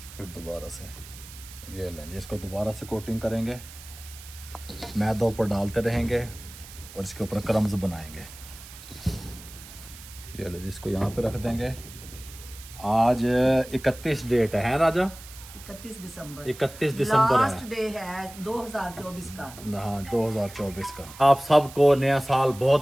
फिर दोबारा से ये लेंगे, इसको दोबारा से कोटिंग करेंगे, मैदा ऊपर डालते रहेंगे और इसके ऊपर क्रम्स बनाएंगे। ये लो, इसको यहाँ पे रख देंगे। आज 31 डेट है राजा, 31 दिसंबर 31 दिसंबर लास्ट डे है 2024 का। हाँ 2024 का। आप सबको नया साल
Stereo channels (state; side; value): noise; right; hiss, 17 dB below the sound